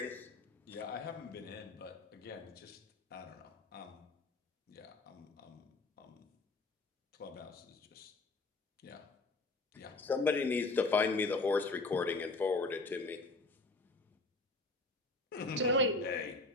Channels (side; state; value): right; quieter; 3.2 dB